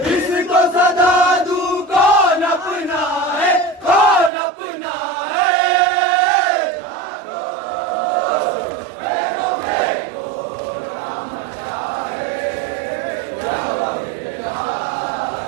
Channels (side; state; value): left; drops out; at 4.3 s